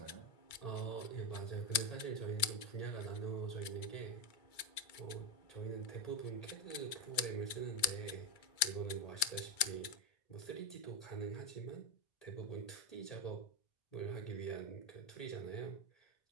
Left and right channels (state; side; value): late; right; 2.3 ms